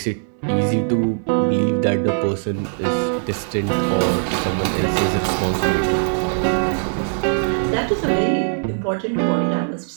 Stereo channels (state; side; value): silent; left; 65 dB below the other